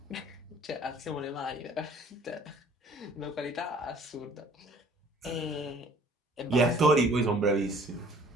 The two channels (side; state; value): both; normal; correlation 0.54